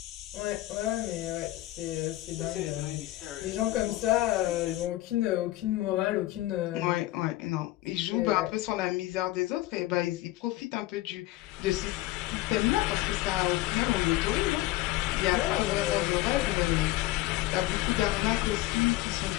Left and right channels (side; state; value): right; quieter; 16.8 dB